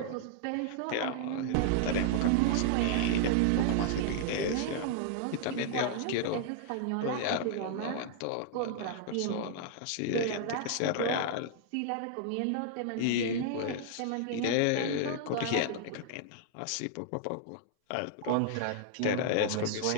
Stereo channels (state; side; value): different; both; correlation -0.01